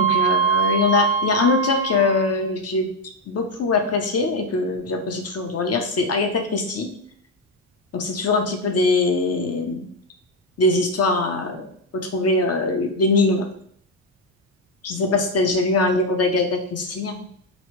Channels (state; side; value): normal; both; correlation 0.05